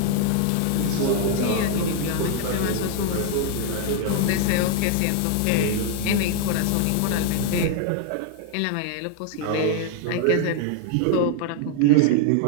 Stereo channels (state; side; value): different; both; correlation 0.00